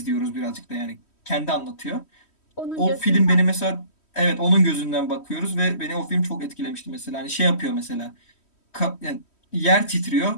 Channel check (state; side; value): late; right; 3.1 ms